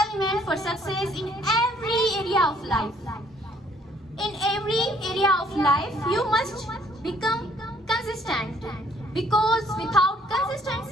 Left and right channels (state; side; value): normal; both; correlation 0.63